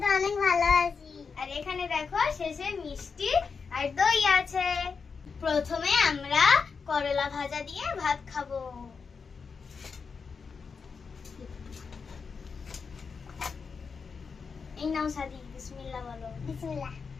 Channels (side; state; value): right; quieter; 5.4 dB